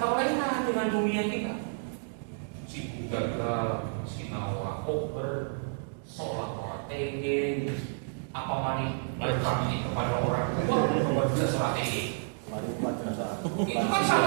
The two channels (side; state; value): left; silent; digital silence